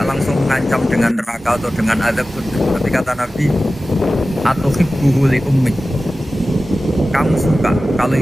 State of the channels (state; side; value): normal; both; correlation 0.95